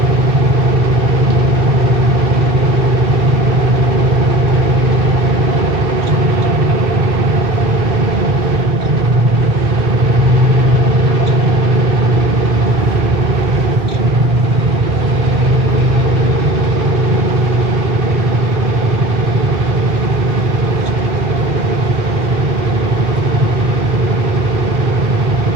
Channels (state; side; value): normal; both; correlation 0.39